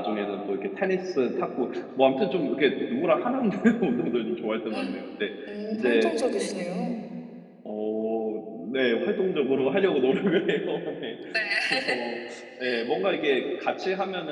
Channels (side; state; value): both; identical; correlation 1.00